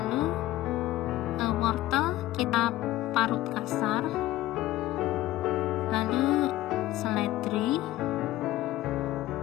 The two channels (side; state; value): right; quieter; 15.7 dB